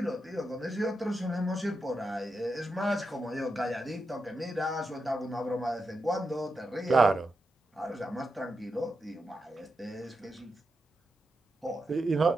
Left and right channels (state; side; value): normal; both; correlation 0.87